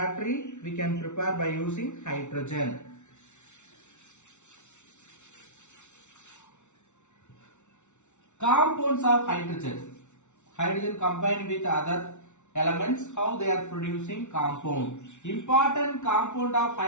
we can prepare by using hydrogen. Compounds of hydrogen. Hydrogen combined with other elements, how they are producing compound. Important compound of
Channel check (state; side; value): late; right; 0.83 ms